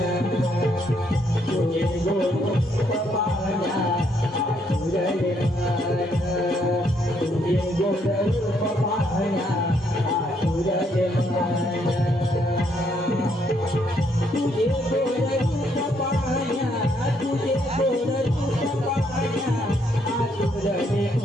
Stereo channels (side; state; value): both; normal; correlation 0.72